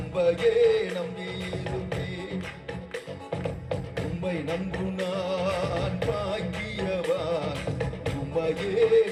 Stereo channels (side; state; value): both; identical; correlation 1.00